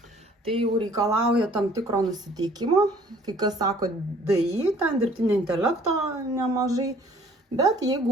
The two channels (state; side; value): normal; both; correlation 0.56